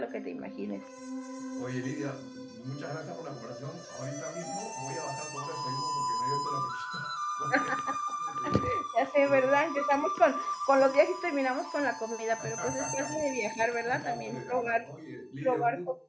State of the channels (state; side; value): identical; both; correlation 1.00